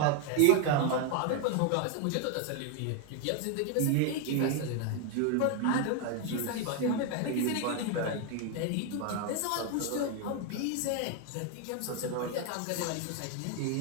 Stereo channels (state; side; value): different; both; correlation 0.01